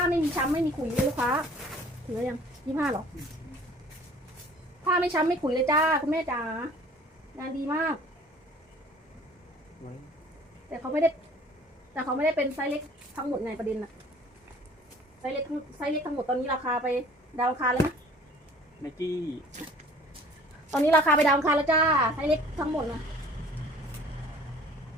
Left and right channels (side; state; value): both; normal; correlation 0.51